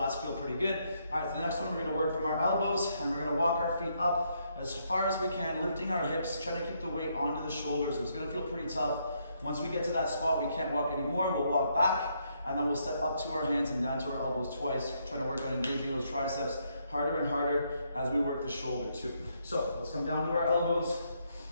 feel pretty good. All right, the next one, we're going to work from our elbows, and we're going to walk our feet up as far as we can, lifting our hips, trying to keep the weight onto the shoulders. It's going to feel pretty tough. Once we get to that spot, we can't walk anymore. We'll walk back, and then we'll step up to our hands and down to our elbows twice, trying to work on engaging those triceps harder and harder as we work the shoulder too. So let's come down to our elbows.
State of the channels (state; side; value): inverted; both; correlation -0.75